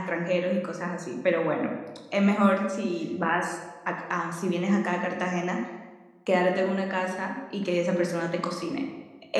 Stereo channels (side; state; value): both; identical; correlation 1.00